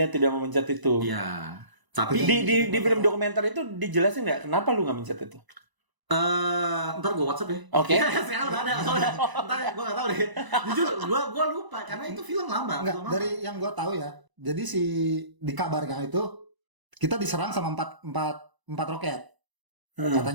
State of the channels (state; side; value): late; left; 1.0 ms